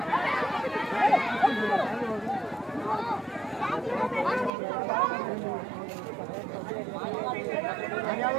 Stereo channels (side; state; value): left; drops out; at 4.5 s